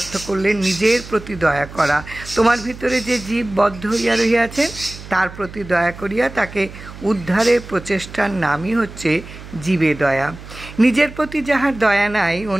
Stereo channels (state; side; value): noise; right; hum, 15 dB below the sound